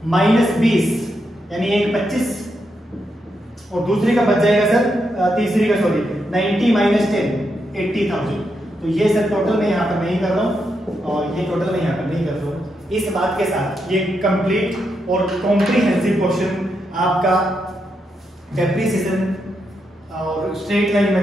माइनस 20 यानी 125, और दूसरी का बच जाएगा सर तीसरी का सॉरी 90 माइनस 10 80,000। तो ये सर टोटल मैं यहाँ पर नहीं कर रहा हूँ और ये टोटल मैं यहाँ पर नहीं कर रहा हूँ। इस बात के साथ ये कंप्लीट और कॉम्प्रिहेंसिव क्वेश्चन आपका डेप्रिसिएशन और स्ट्रेट लाइन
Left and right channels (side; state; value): both; normal; correlation 0.82